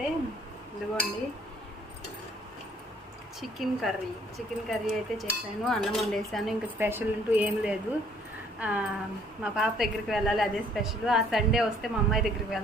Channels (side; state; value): both; normal; correlation 0.60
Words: ఇదిగోండి చికెన్ కర్రీ అయితే చేశాను, అన్నం వండేసాను. ఇంకా స్పెషల్ అంటూ ఏం లేదు. మా పాప దగ్గరికి వెళ్ళాలి, అదే స్పెషల్. ఆ సండే వస్తే మా అమ్మాయి దగ్గరికి